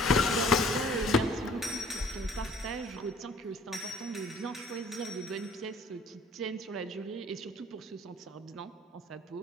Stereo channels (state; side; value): normal; both; correlation 0.54